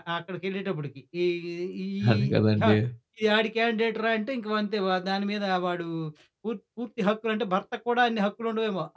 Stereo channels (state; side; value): identical; both; correlation 1.00